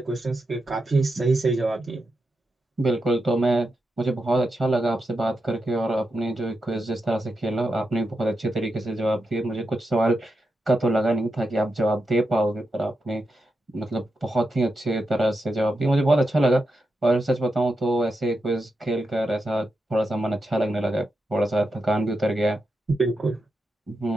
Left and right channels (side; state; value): both; normal; correlation 0.87